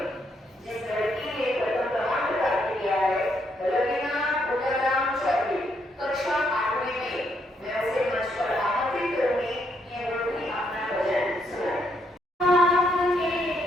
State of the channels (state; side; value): normal; both; correlation 0.75